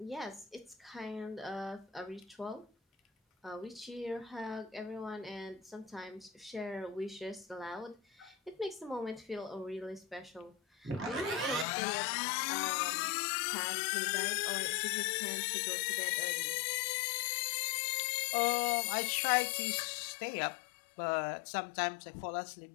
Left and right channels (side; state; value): right; drops out; at 11.7 s